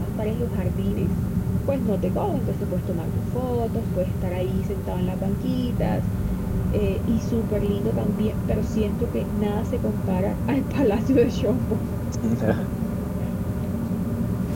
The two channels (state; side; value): identical; both; correlation 1.00